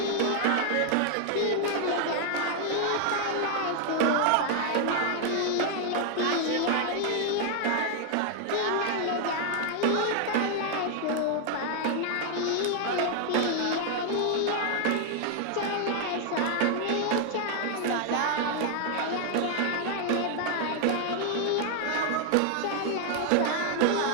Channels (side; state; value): both; different; correlation 0.00